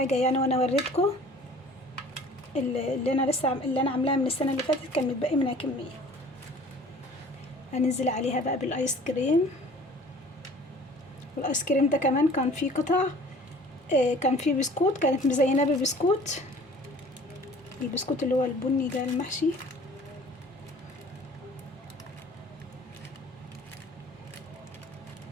يعني. وانا وريتكم اللي انا عاملاها من السنة اللي فاتت كان متبقي منها كمية. هننزل عليها بقى بالايس كريم. والايس كريم ده كمان كان فيه قطع، كان فيه بسكوت، كانت مزيناه ببسكوت، البسكوت اللي هو البني ده المحشي.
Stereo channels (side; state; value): both; normal; correlation 0.49